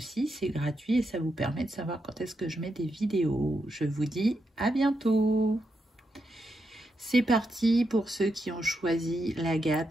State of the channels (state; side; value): normal; both; correlation 0.84